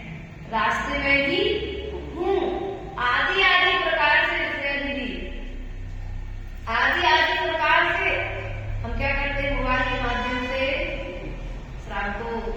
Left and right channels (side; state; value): both; identical; correlation 1.00